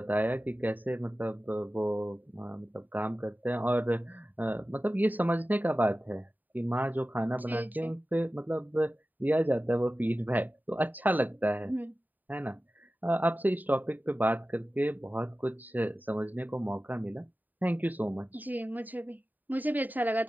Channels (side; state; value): left; late; 0.087 ms